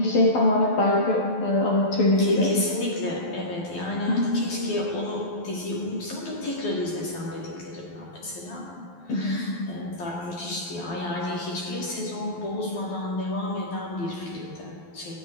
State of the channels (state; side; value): late; right; 12 ms